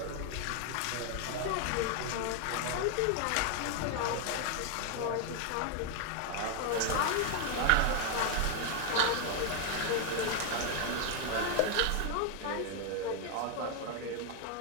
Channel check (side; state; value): both; different; correlation 0.00